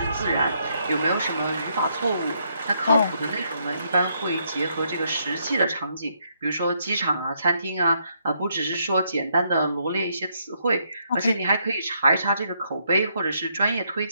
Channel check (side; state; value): both; inverted; correlation -0.74